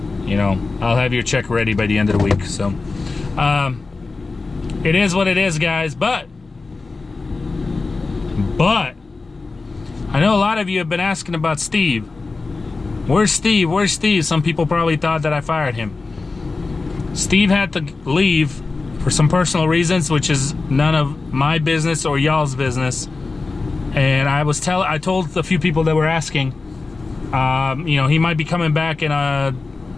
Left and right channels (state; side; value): quieter; right; 3.8 dB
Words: You know, I'll have your check ready by the end of the week. So it is what it is, guys. But I know a lot of you have been asking about Steve. Where's Steve? Where's Steve? Some people probably thought that I fired him. Steve had to leave for some personal reasons, which is none of my business or y'all's business. And I told a few people that were asking, you know, he might be coming back in